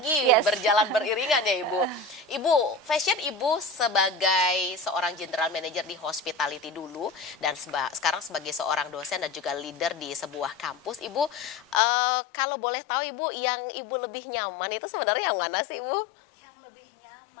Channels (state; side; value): drops out; right; at 11.8 s